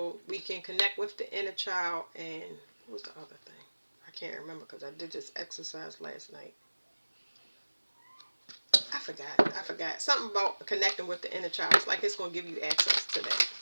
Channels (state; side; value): inverted; both; correlation -1.00